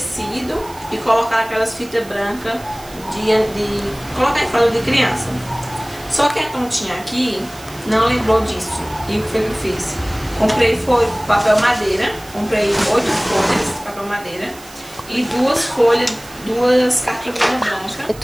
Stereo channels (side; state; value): right; noise; hiss, 20 dB below the sound